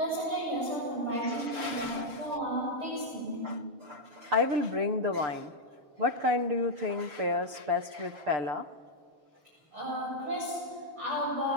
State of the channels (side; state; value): left; late; 6.8 ms